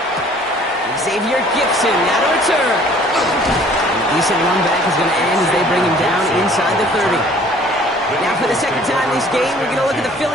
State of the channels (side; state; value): both; normal; correlation 0.54